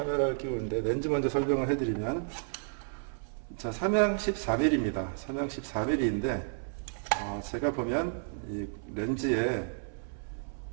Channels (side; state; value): left; silent; 56 dB below the other